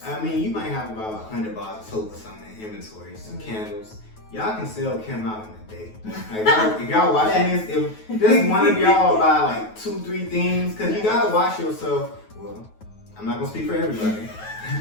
I mean, you might have about 100 bars of soap or something in inventory, some candles. Y'all can sell Kim out in a day. Like, if y'all watching this, if just one of y'all buy like 2-3 things, because you gotta wash yourself. Well, I'm not gonna speak for everybody,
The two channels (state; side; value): late; right; 9.3 ms